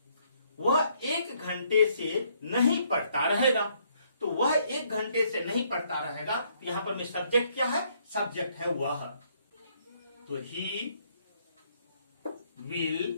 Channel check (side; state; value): both; inverted; correlation -0.69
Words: वह 1 घंटे से नहीं पढ़ता रहेगा। तो वह 1 घंटे से नहीं पढ़ता रहेगा। यहां पर में सब्जेक्ट क्या है? सब्जेक्ट है वह। तो ही